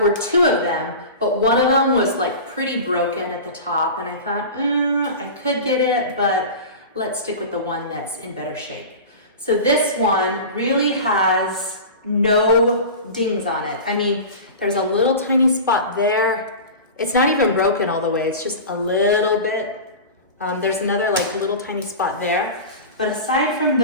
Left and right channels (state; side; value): inverted; both; correlation -0.31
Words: two of them, but one of them was like pretty broken at the top. And I thought, I could get it, but let's stick with the one that's in better shape. So this one really has no dings on it. I mean, There's a little tiny spot there. It's not even broken all the way, it's just a little bit. There's another like little tiny spot there. But aside from